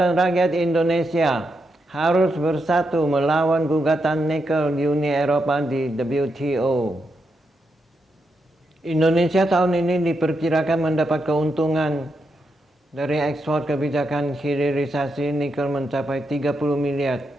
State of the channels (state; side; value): normal; both; correlation 0.83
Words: Rakyat Indonesia harus bersatu melawan gugatan nikel Uni Eropa di WTO. Indonesia tahun ini diperkirakan mendapat keuntungan dari ekspor kebijakan hilirisasi nikel mencapai 30 miliar